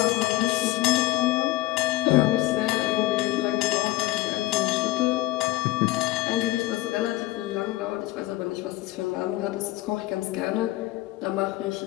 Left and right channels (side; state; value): right; quieter; 17.7 dB